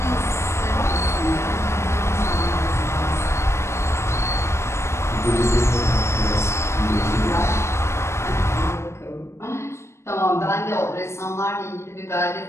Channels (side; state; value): right; late; 0.13 ms